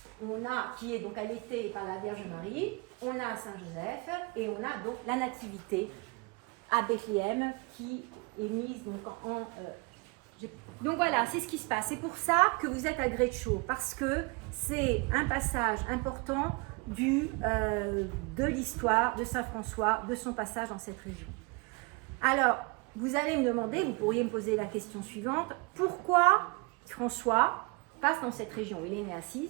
qui est donc allaité par la Vierge Marie, on a Saint Joseph et on a donc la nativité à Bethléem qui est mise donc donc voilà, c'est ce qui se passe. C'est pour ça que vous êtes à Greccio, parce que c'est un passage important de l'histoire de Saint François, de son passage dans cette région. Alors, vous allez me demander, vous pourriez me poser la question suivante, pourquoi François passe dans cette région? Il est né à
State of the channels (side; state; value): left; quieter; 28.6 dB